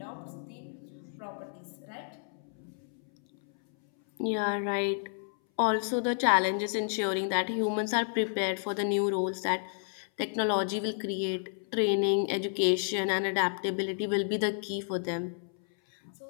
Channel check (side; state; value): right; silent; 57 dB below the other